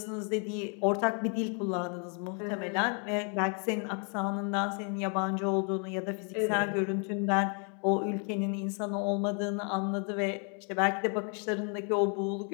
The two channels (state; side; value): quieter; right; 39.0 dB